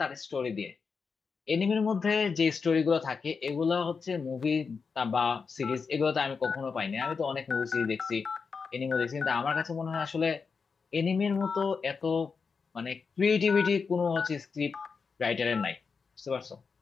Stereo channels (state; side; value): quieter; right; 5.3 dB